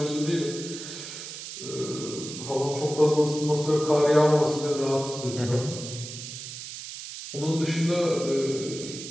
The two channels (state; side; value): noise; right; hiss, 10 dB below the sound